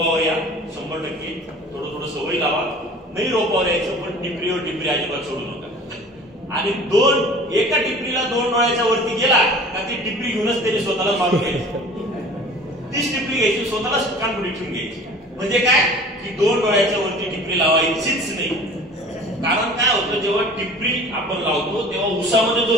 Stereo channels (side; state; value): both; normal; correlation 0.45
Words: या 100%, थोडं थोडं सवय लावा. नाही रोपावर यायचं, पण टिपरीवर टिपरी अजिबात सोडू नका. आणि एका टिपरीला 2 डोळ्याच्या वरती गेला का ती टिपरी घेऊनच त्याने स्वतःला मारून घ्यायची. तीच टिपरी घ्यायची, स्वतःला कानपुडी ठेवून घ्यायची. म्हणजे काय की 2 डोळ्याच्या वरती टिपरी लावायचीच नाही. कारण काय होतं, जेव्हा टिपरी आपण लावतो तेव्हा उसामध्ये